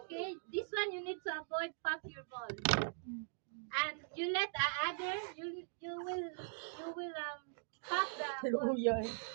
Okay, this one you need to avoid pop your ball, and you let the other you will pop the ball.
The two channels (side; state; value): left; silent; digital silence